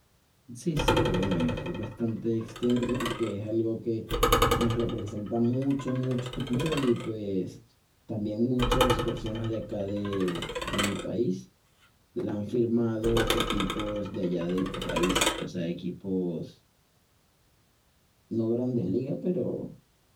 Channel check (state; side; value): identical; both; correlation 1.00